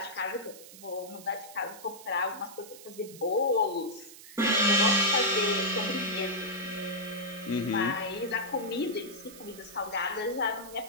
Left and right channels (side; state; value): right; noise; hiss, 17 dB below the sound